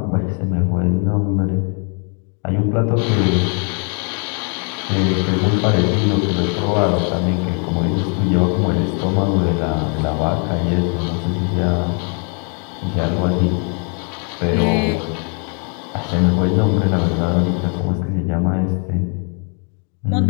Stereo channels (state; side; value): quieter; right; 39.5 dB